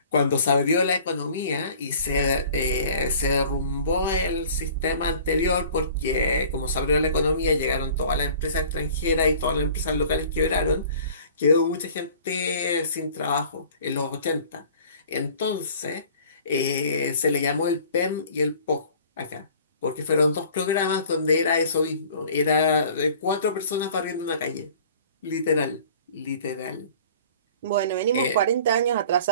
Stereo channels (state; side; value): inverted; both; correlation -0.48